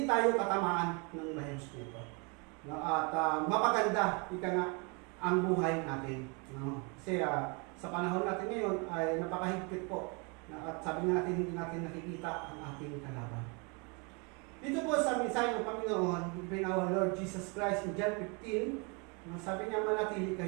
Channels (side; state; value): left; quieter; 32.2 dB